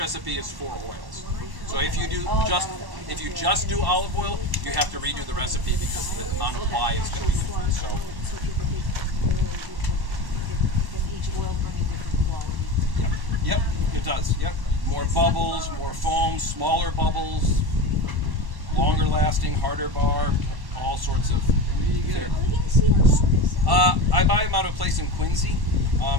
is for oils. So if you just do olive oil, you have to redo the recipe because the amount of lye is going to be different. So. Each oil bringing different quality. Yep, it does. Yep. More bubbles, more foam, smaller bubbles, longer lasting, harder bar, all sorts of. I buy them out of a place in Quincy,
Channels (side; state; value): left; late; 1.1 ms